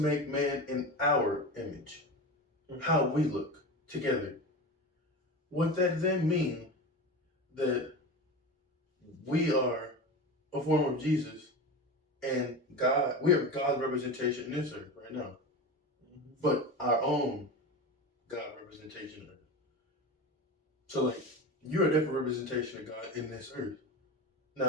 man in our image, how we look together. Would that then mean that we are a form of Jesus and God, we are God's representation in this earth right now, but our own God representation. So like, you're a different representation of God in this earth.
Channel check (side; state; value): both; normal; correlation 0.26